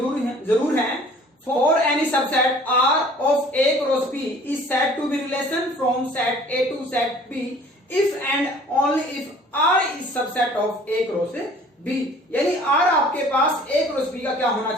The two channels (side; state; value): both; normal; correlation 0.51